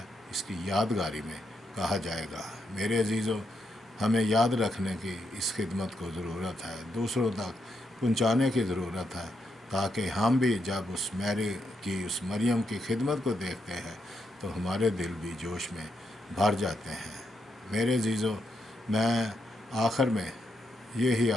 اس کی یادگاری میں کہا جائے گا۔ میرے عزیزو، ہمیں یاد رکھنے کی اس خدمت کو ضرورت ہے، دوسروں تک پہنچانے کی ضرورت ہے، تاکہ ہم بھی جب اس میری کی، اس مریم کی خدمت کو دیکھتے ہیں تو ہمارے دل بھی جوش میں بھر جاتے ہیں۔ میرے عزیزو، میں آخر میں یہی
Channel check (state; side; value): normal; both; correlation 0.81